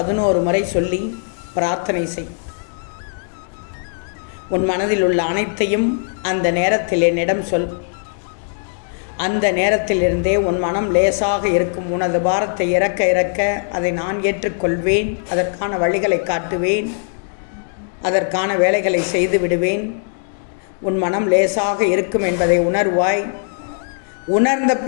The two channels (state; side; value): silent; right; digital silence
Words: முறை சொல்லி பிரார்த்தனை செய். உன் மனதில் உள்ள அனைத்தையும் அந்த நேரத்தில் என்னிடம் சொல். அந்த நேரத்திலிருந்தே உன் மனம் லேசாக இருக்கும். உனது பாரத்தை இறக்க இறக்க அதை நான் ஏற்றுக்கொள்வேன். அதற்கான வழிகளை காட்டுவேன். அதற்கான வேலைகளை செய்து விடுவேன். உன் மனம் லேசாக இருக்கும் என்பதை உணர்வாய். உணர்ந்த